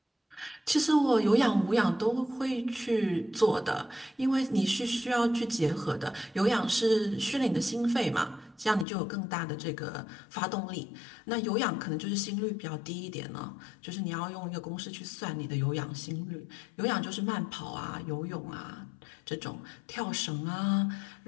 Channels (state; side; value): drops out; right; at 8.8 s